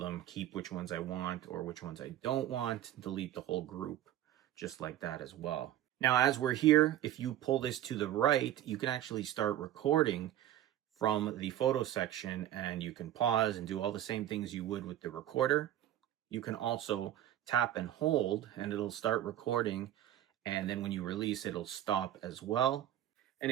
keep which ones I want or which ones I don't want, delete the whole group just like that as well. Now, as we're here, if you pull this to the right, you can actually start recording from the photo section, and you can pause and do all the same things you would with the recorder. You can also tap and hold and it'll start recording, and then when you release it'll stop as well. And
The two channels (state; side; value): quieter; left; 12.5 dB